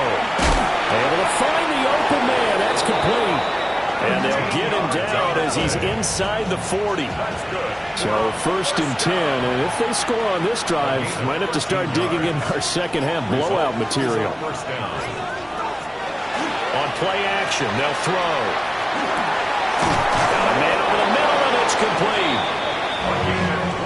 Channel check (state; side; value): identical; both; correlation 1.00